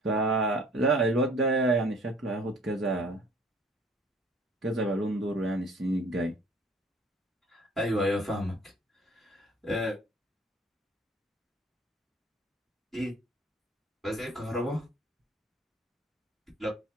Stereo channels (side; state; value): both; normal; correlation 0.52